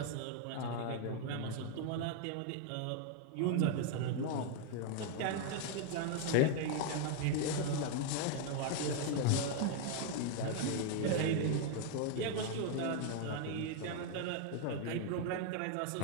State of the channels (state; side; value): different; both; correlation 0.00